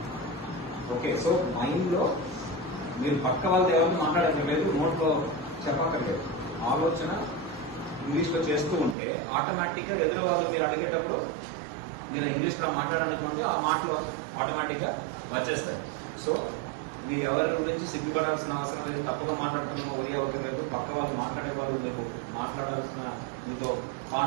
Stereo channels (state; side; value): drops out; left; at 9.0 s